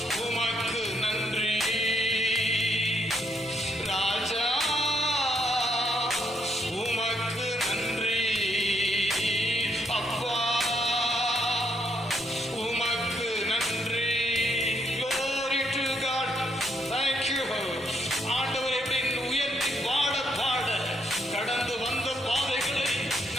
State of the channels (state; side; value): normal; both; correlation 0.73